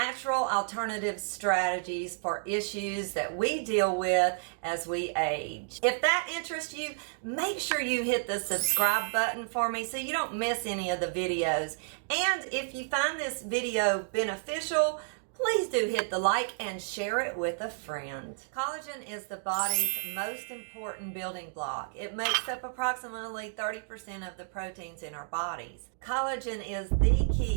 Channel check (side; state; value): left; silent; digital silence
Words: alternative strategies for issues that we deal with as we age. If that interests you, make sure you hit the subscribe button for me so you don't miss any of the videos. And if you find this video beneficial, please do hit the like and share it with a friend. Collagen is the body's most important building block. It makes up approximately 30% of the proteins in our bodies. Collagen is the